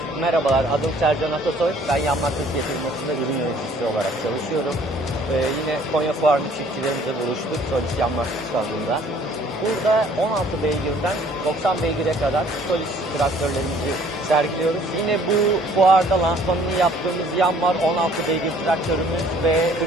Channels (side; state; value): both; normal; correlation 0.57